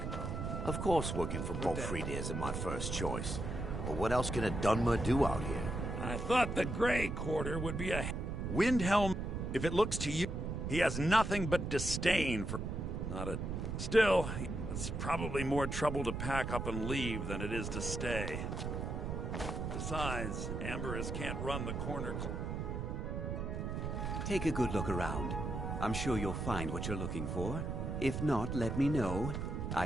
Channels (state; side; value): noise; right; rumble, 3 dB below the sound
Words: Of course working for Bolfrid isn't my first choice. But what else can a Dunmer do out here? I thought the Grey Quarter would be a... Windhelm, if it looks to you, he has nothing but disdain for... Not a... Still, it's probably more trouble to pack up and leave than it is to stay. Besides, Amberus can't run the corner... Take a good look around. I'm sure you'll find what you're looking for. If not, let me know. I